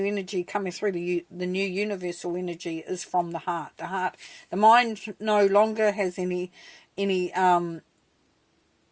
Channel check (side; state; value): both; identical; correlation 1.00